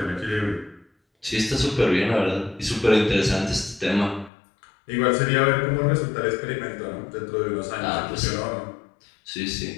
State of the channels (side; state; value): right; drops out; at 4.3 s